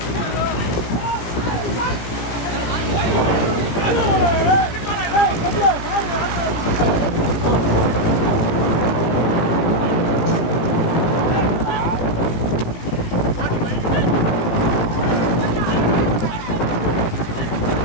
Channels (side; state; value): right; late; 17 ms